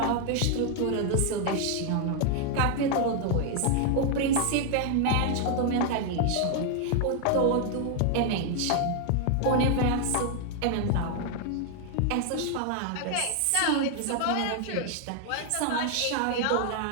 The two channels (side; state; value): both; different; correlation 0.00